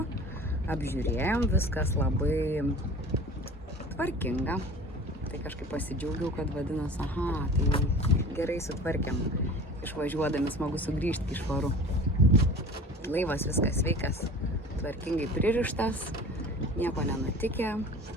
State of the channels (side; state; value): both; normal; correlation 0.41